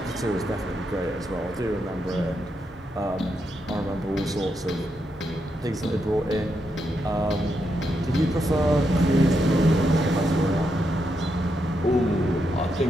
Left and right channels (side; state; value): both; normal; correlation 0.82